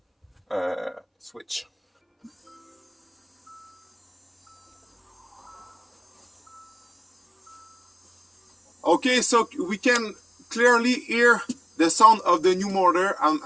switch. Okay, so we can clearly hear the sound of the new motor. I'm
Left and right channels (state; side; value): identical; both; correlation 1.00